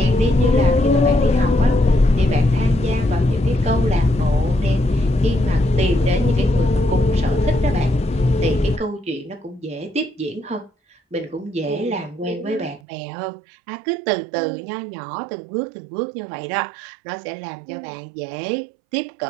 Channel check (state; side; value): drops out; left; at 12.8 s